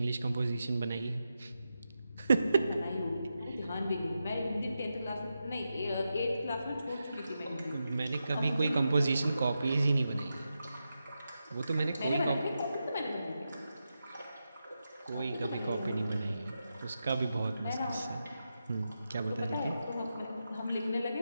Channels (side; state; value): both; inverted; correlation -0.88